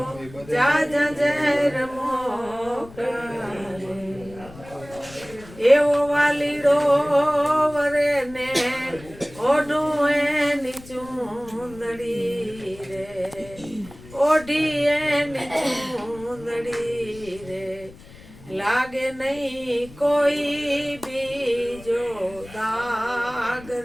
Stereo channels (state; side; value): noise; left; rumble, 19 dB below the sound